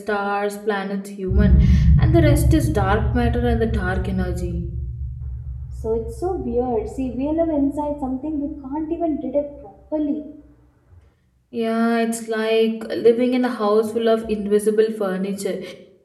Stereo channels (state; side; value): identical; both; correlation 1.00